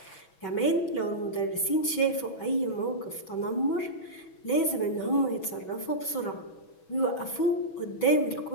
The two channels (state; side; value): late; right; 6.2 ms